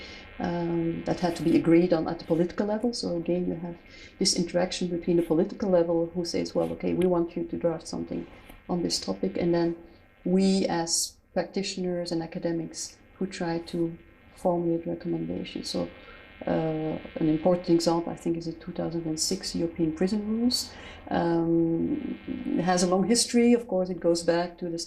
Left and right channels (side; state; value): both; identical; correlation 1.00